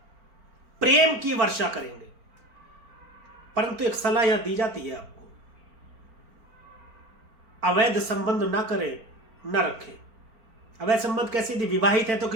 प्रेम की वर्षा करेंगे, परंतु एक सलाह यहां दी जाती है आपको, अवैध संबंध ना करें, ना रखें। अवैध संबंध कैसे? यदि विवाहित है तो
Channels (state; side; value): late; left; 4.4 ms